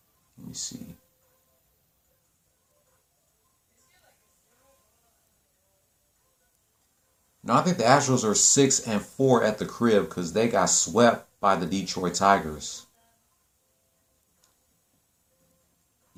Let me see. No, I think the Astros are 6-4 at the crib because they got swept by the Detroit Tigers.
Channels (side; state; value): both; identical; correlation 1.00